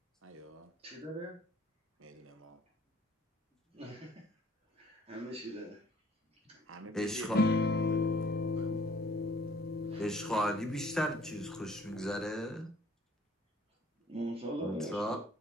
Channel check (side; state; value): both; normal; correlation 0.57